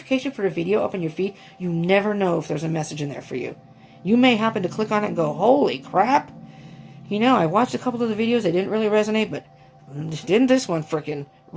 for a video up on your feed, you never know if there's a message in there for you. You may happen to click on it and go, holy crap. I watched a couple of the videos, they didn't really resonate, but didn't this one freaking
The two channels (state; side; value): identical; both; correlation 1.00